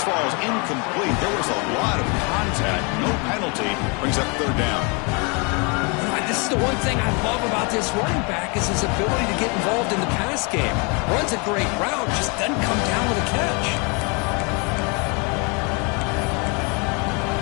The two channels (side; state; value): right; quieter; 32.4 dB